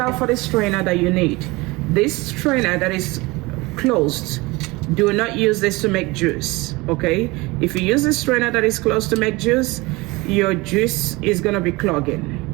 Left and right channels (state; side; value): quieter; left; 23.1 dB